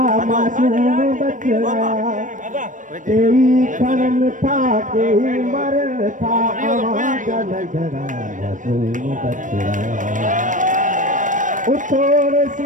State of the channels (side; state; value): left; late; 0.37 ms